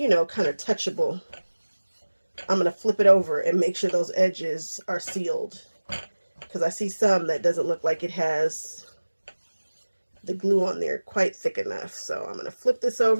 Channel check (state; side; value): inverted; both; correlation -1.00